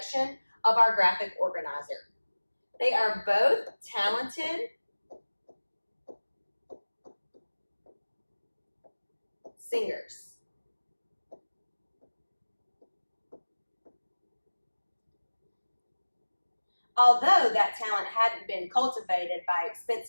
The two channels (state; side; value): inverted; both; correlation -1.00